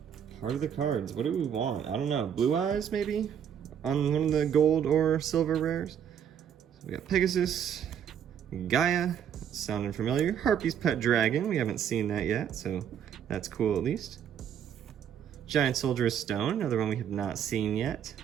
Heart of the Cards. What do we want? I don't know. Blue Eyes, maybe? on one of the gold or silver rares. So we got Pegasus, Gaia, sounding familiar. Harpy's Pet Dragon, we haven't seen that yet, so that's cool at least. Giant Soldier of Stone, another one we have not seen yet.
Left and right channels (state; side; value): quieter; left; 8.7 dB